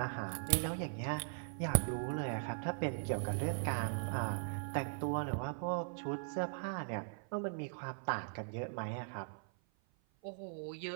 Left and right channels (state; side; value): silent; left; 51 dB below the other